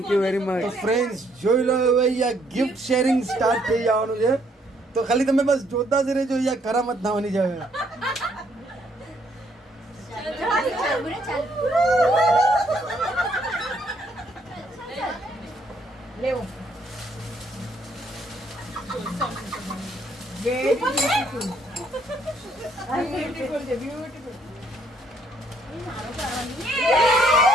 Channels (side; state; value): both; normal; correlation 0.69